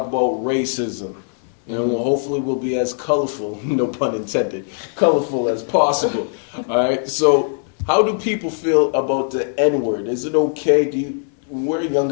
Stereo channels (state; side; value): silent; right; 62 dB below the other